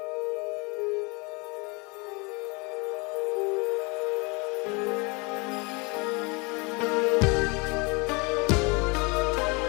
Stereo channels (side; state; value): right; quieter; 29.1 dB